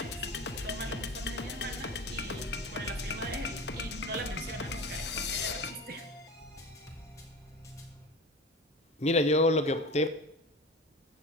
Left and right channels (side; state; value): both; normal; correlation 0.32